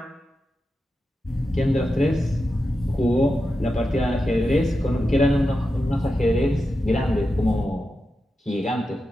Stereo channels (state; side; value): normal; both; correlation 0.90